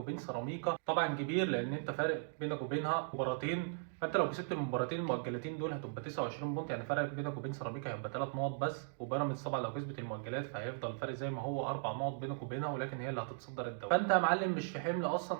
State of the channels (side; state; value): left; silent; digital silence